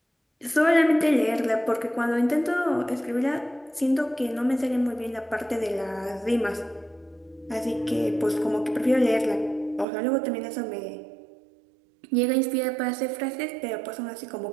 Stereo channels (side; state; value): left; drops out; at 9.9 s